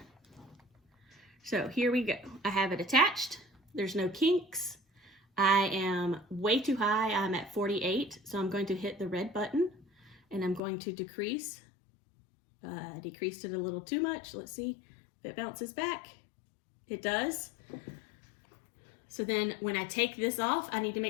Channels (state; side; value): drops out; right; at 10.6 s